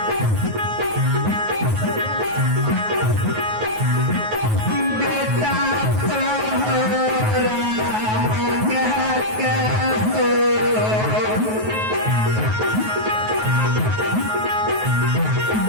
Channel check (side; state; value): left; late; 9.3 ms